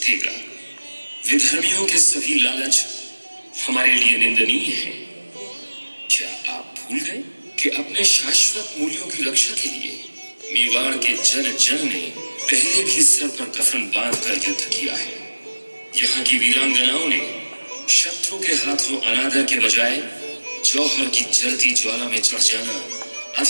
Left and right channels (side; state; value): both; inverted; correlation -1.00